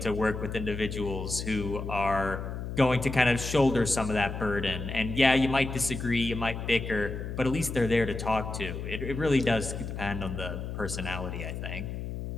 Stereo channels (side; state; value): left; noise; hum, 6 dB below the sound